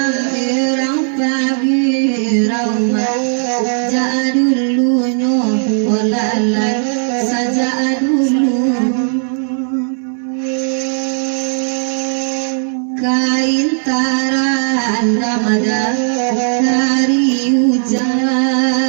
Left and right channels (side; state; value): left; silent; digital silence